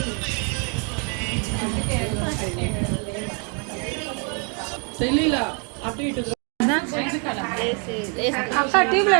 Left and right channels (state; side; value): quieter; left; 37.7 dB